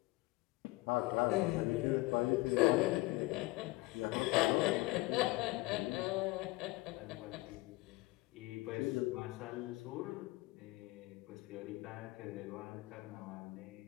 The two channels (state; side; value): quieter; right; 21.2 dB